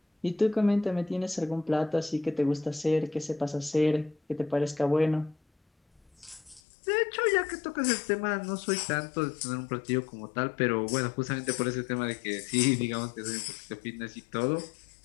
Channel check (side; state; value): right; drops out; at 6.6 s